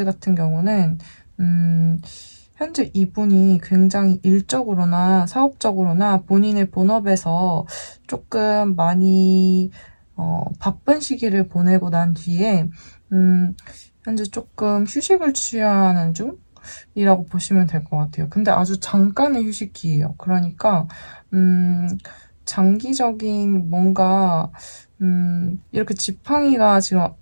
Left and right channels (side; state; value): both; inverted; correlation -1.00